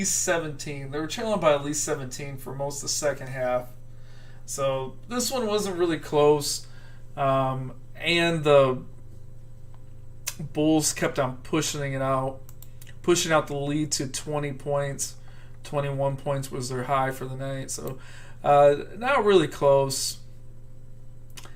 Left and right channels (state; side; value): identical; both; correlation 1.00